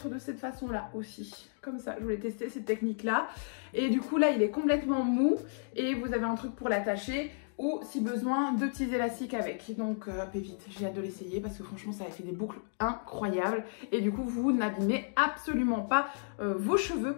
de cette façon là aussi, comme ça. Je voulais tester cette technique là et du coup là il est complètement mou et vous avez un truc pour l'attacher ou si besoin 2 petits élastiques avec. Donc pépite, j'ai hâte de l'essayer parce que franchement ça a fait des boucles incroyables et du coup vous n'abîmez absolument pas vos cheveux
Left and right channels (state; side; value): silent; right; digital silence